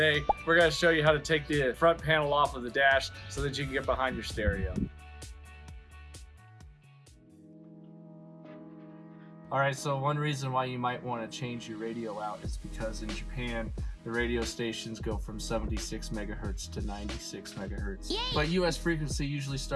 We're going to show you how to take the front panel off of the dash so that you can get behind your stereo. Alright, so one reason why you might want to change your radio out is because in Japan, the radio stations go from 76 megahertz to 96 megahertz. Yay! But US frequency usually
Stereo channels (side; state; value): both; identical; correlation 1.00